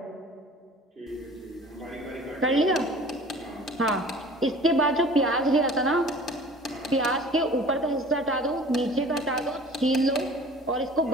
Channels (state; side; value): normal; both; correlation 0.45